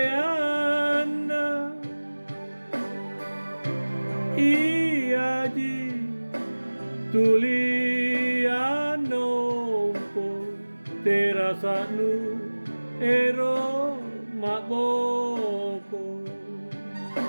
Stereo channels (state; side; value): inverted; both; correlation -1.00